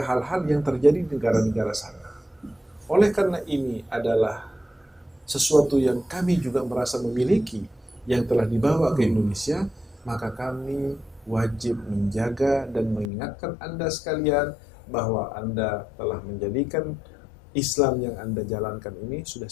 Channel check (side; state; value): right; drops out; at 13.1 s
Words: yang terjadi di negara-negara sana. Oleh karena ini adalah sesuatu yang kami juga merasa memiliki, yang telah dibawa ke Indonesia, maka kami wajib menjaga dan mengingatkan Anda sekalian bahwa Anda telah menjadikan Islam yang Anda jalankan ini sudah